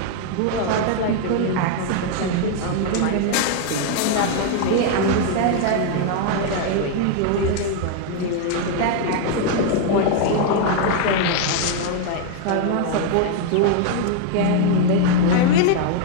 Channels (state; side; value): different; both; correlation 0.00